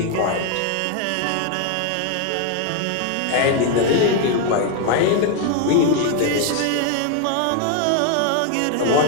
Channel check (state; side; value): different; both; correlation 0.01